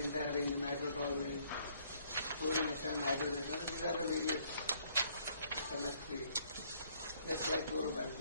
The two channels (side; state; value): both; inverted; correlation -0.66